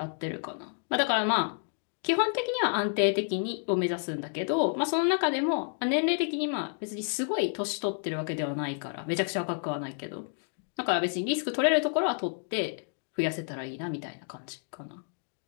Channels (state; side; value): silent; right; 58 dB below the other